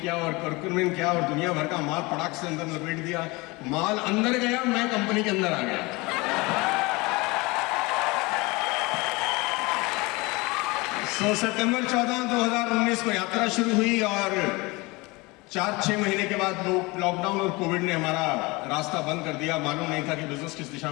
और कर्कुमिन क्या और दुनिया भर का माल पटाख से अंदर लपेट दिया। माल अंदर गया, मैं कंपनी के अंदर आ गया। सितंबर 14, 2019 को यात्रा शुरू हुई और 4-6 महीने के बाद लॉकडाउन और कोविड ने हमारा रास्ता बंद कर दिया। मालूम नहीं था कि बिजनेस किस दिशा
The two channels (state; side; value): quieter; right; 24.4 dB